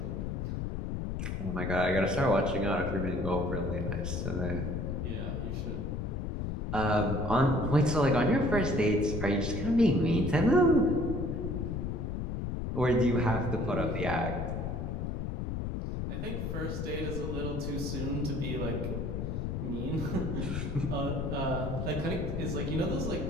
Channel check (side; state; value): left; noise; rumble, 3 dB below the sound